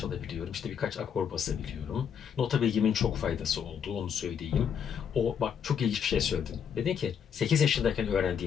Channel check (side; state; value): right; quieter; 7.7 dB